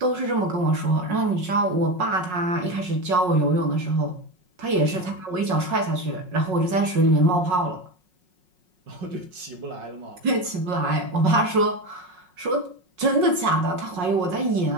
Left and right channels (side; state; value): left; late; 5.5 ms